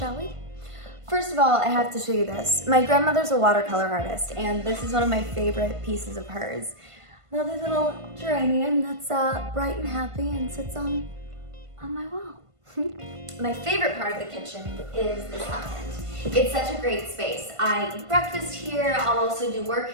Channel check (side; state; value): left; late; 1.5 ms